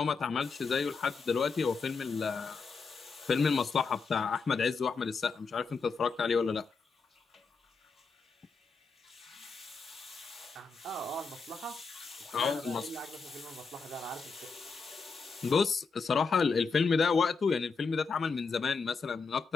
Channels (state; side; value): quieter; right; 4.8 dB